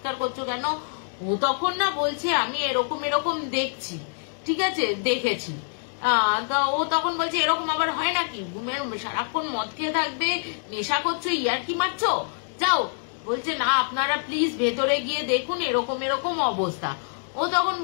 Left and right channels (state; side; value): silent; right; digital silence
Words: করছো কেন? ও তখন না বলছে আমি এরকম দেখছি। ঠিক আছে, দেখেছি। তো ও তখন বলছে এরকম আবার হয় নাকি, সারাক্ষণ মদ খেয়ে থাকবে, নেশা করছো, ইয়ার কি মারছো, যাও। বলছে না আপনারা প্লিজ ভেতরে গিয়ে দেখুন এরকম এরকম অবস্থা। ও তখন